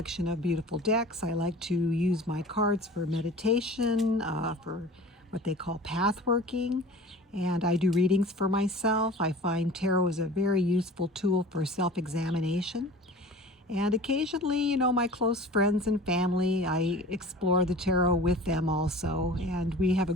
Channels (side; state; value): both; normal; correlation 0.41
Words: of beautiful decks. I like to use my cards for meditation, for what they call path working, and I do readings for myself. I find tarot is a very useful tool for self-examination. And occasionally, my close friends and family, I explore the tarot with them also, and we have a